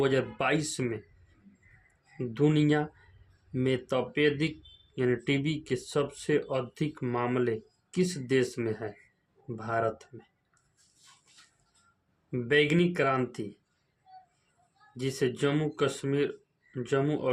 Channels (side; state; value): both; identical; correlation 1.00